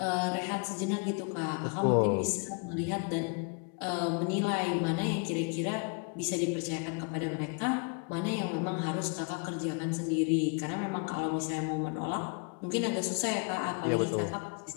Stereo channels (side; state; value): right; quieter; 34.9 dB